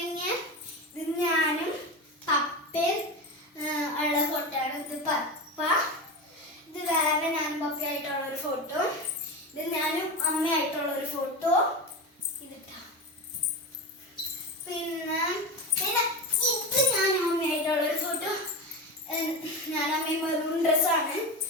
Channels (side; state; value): both; normal; correlation 0.22